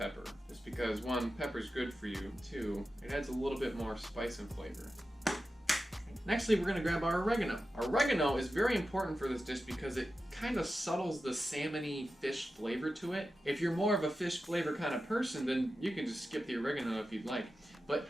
just because 1, pepper's good for you. 2, it adds a little bit more spice and flavor. Nextly, we're gonna grab our oregano. Oregano is very important for this dish because it kind of subtles the salmony fish flavor to it. If you're more of a fish flavor kind of person, then you can just skip the oregano if you'd like. But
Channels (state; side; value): normal; both; correlation 0.92